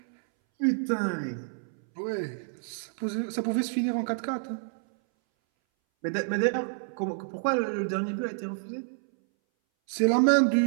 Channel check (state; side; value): silent; left; 59 dB below the other